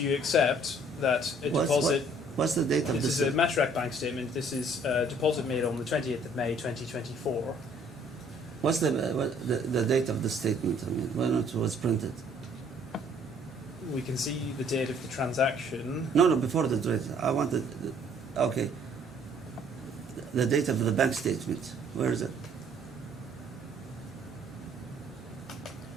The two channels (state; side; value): normal; both; correlation 0.60